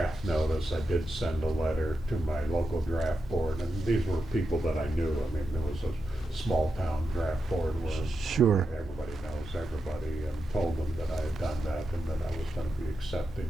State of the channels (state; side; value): normal; both; correlation 0.87